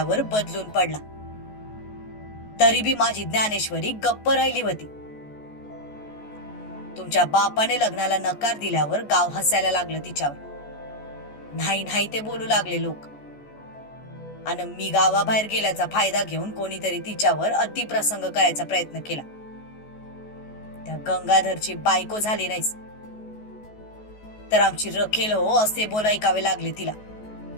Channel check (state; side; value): late; right; 14 ms